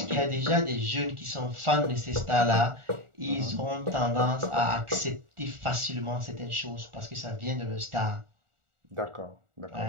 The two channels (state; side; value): late; left; 1.4 ms